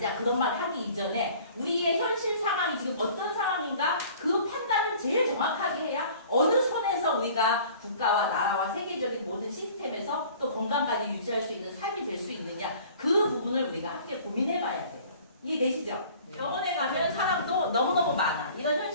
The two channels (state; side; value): inverted; both; correlation -0.49